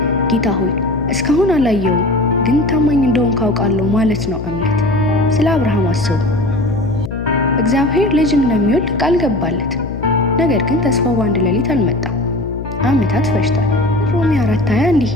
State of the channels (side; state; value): left; noise; hum, 9 dB below the sound